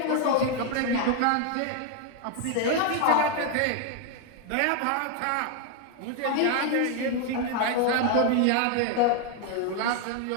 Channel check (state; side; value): different; both; correlation 0.01